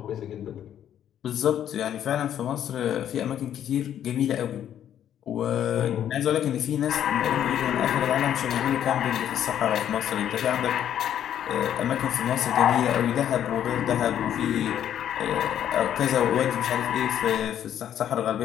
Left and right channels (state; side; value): quieter; right; 10.3 dB